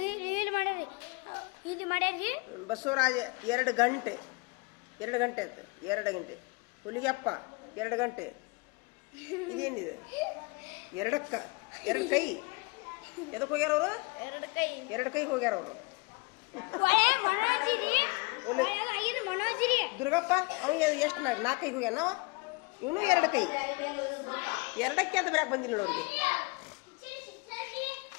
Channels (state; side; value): quieter; right; 28.0 dB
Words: ಬಸವರಾಜ 2 ಗಂಟೆ ಆಯ್ತು. 2 ಗಂಟೆ ಹುಲಿಗೆಪ್ಪ 2 ಗಂಟೆ. ಇದೇನಿದೆ 2 ಕೈ. ಎದಕ್ಕೆ ಹೋಗ್ಯಾರ ಅವರು? 2 ಕೈ ಹೋಗ್ಯಾರ ಅವರು. ದುರ್ಗಪ್ಪ ಅವ ಎಷ್ಟು 4 ಕೈ ಹೋಗ್ಯಾನ. ಇವನು 2 ಕೈ. 2ಕ್ಕೆ ಅಂತ ಬರಕ್ಕೆ ಬಂದಿಲ್ಲ ಅವ್ರಿಗೆ.